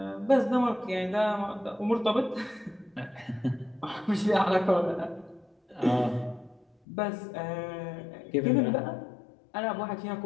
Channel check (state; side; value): drops out; right; at 6.8 s